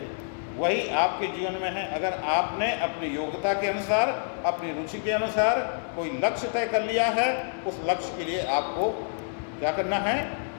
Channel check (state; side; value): silent; right; digital silence